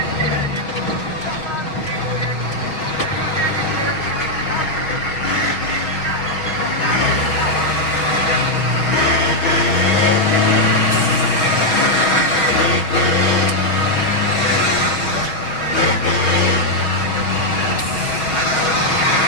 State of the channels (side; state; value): right; late; 6.7 ms